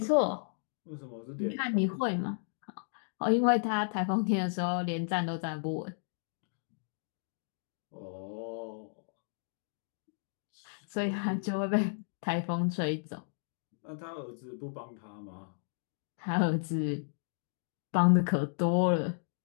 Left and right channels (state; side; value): silent; right; digital silence